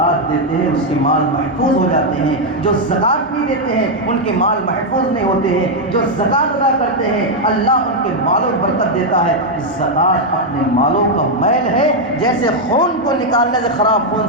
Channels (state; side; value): normal; both; correlation 0.00